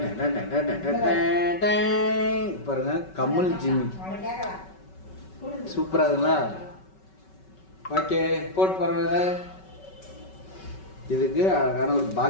பாருங்க, கம்மல் ஜிம்மி சூப்பரா இருக்குங்களா? ஓகே, போட்டு பாருங்க. இதுக்கு அழகான ஒரு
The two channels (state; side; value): late; right; 5.3 ms